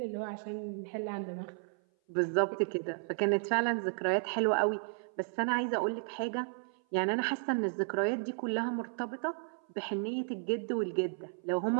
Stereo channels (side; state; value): left; silent; 55 dB below the other